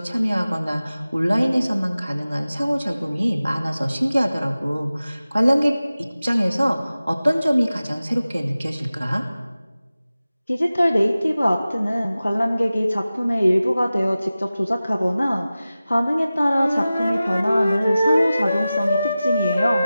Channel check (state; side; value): inverted; both; correlation -0.96